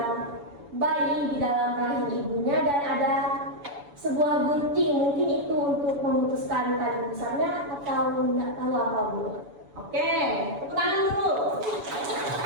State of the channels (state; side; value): late; left; 7.0 ms